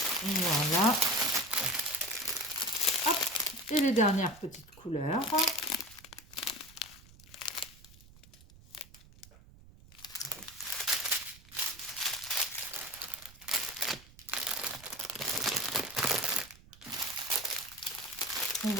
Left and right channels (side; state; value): right; noise; rumble, 22 dB below the sound